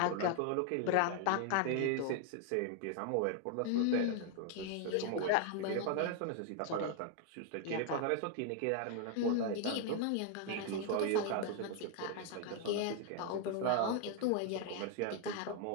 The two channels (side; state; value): both; different; correlation 0.00